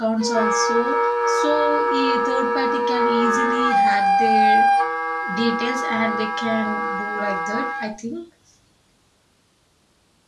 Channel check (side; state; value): both; identical; correlation 1.00